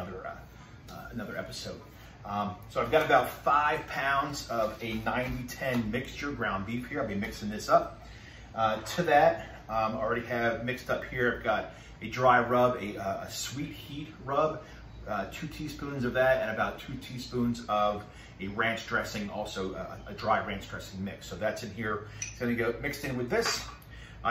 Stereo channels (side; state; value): both; identical; correlation 1.00